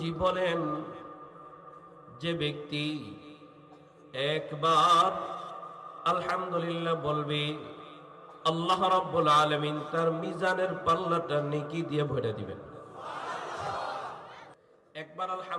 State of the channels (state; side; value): identical; both; correlation 1.00